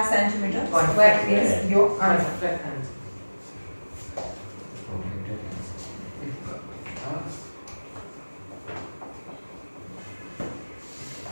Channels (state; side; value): inverted; both; correlation -1.00